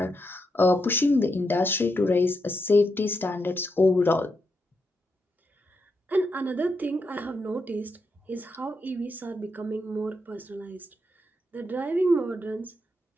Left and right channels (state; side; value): normal; both; correlation 0.83